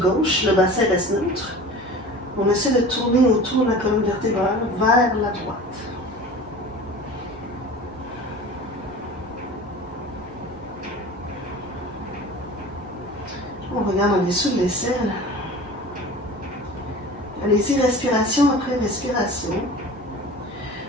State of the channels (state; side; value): normal; both; correlation 0.38